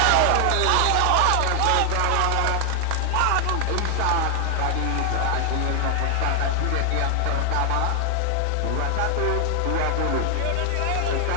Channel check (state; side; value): different; both; correlation 0.00